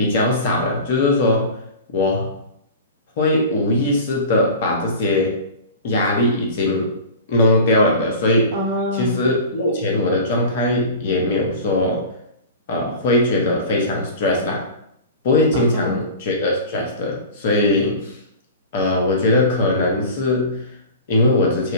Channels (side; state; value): both; inverted; correlation -0.36